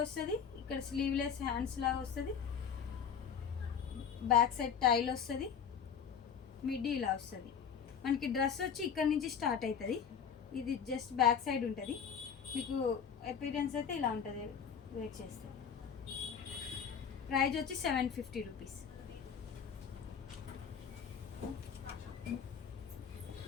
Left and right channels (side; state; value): right; quieter; 7.3 dB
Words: వస్తుంది, ఇక్కడ స్లీవ్లెస్ హ్యాండ్స్ లాగా వస్తుంది, బ్యాక్ సైడ్ టైల్ వస్తుంది, మిడ్డీ ఇలా వస్తుంది. మనకి డ్రెస్ వచ్చి ఇక్కడ నుంచి స్టార్ట్ అవుతుంది. ఇది జస్ట్ బ్యాక్ సైడ్ ఉంటుంది. మీకు అపీరెన్స్ అయితే ఇలా ఉంటుంది వేర్ చేస్తే. ప్రైజ్ వచ్చి 750 రూపీస్.